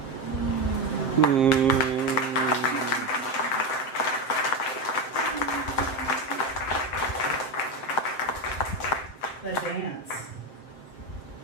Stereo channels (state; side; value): late; right; 7.5 ms